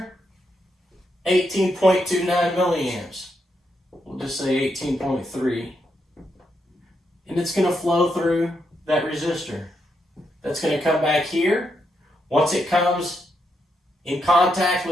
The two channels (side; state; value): both; normal; correlation 0.81